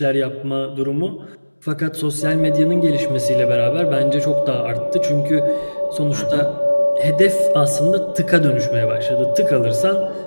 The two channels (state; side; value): inverted; both; correlation -1.00